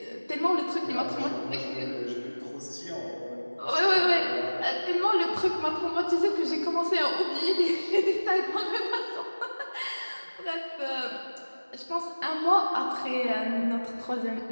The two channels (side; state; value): both; inverted; correlation -1.00